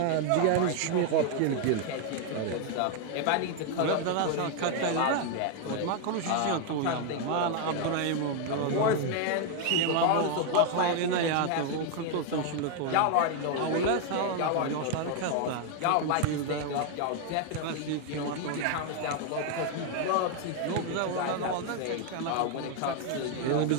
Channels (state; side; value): different; both; correlation 0.00